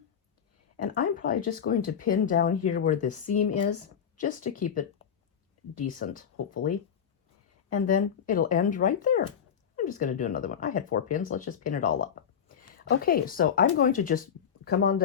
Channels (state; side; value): quieter; right; 7.9 dB